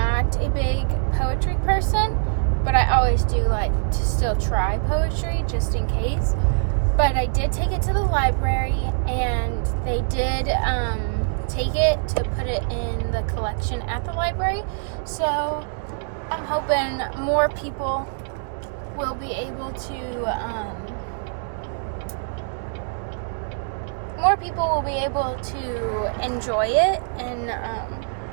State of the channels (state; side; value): silent; left; digital silence